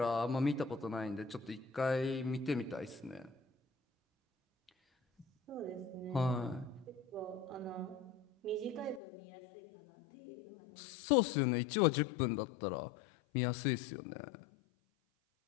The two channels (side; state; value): right; drops out; at 9.0 s